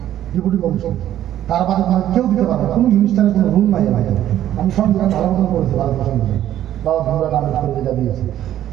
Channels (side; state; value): left; quieter; 12.0 dB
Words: ডেপুটি কমিশন তার বাদে কেউ দিতে পারবে কোনো মিনিস্টারের কোনো রুল নাই আমি সংবিধান ভালো মতন করেছি পারমিশন দিয়ে বাবা ভূমিকা কামিজ করে যেটা দিয়েছে